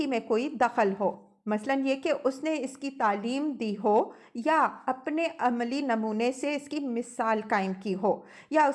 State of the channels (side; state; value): both; identical; correlation 1.00